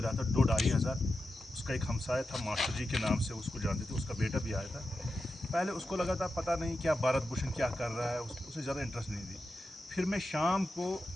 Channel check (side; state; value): both; normal; correlation 0.90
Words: रहा था 2-2.5 हज़ार, उसका एक हमसाया था मास्टर जी के नाम से, उसको जानते थे, उसका बेटा भी आया था। पहले उसको लगा था पता नहीं क्या भारत भूषण क्या कर रहा है, उसे ज़्यादा इंटरेस्ट नहीं दी। फिर मैं शाम को